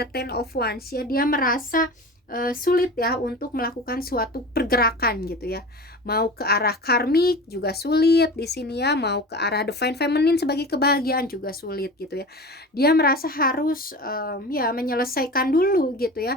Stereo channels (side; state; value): both; normal; correlation 0.34